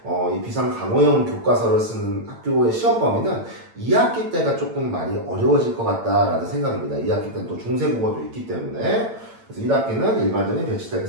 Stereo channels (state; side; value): late; left; 8.9 ms